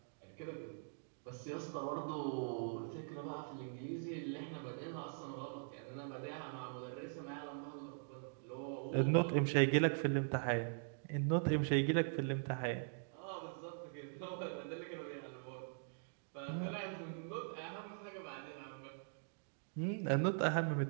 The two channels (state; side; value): silent; left; digital silence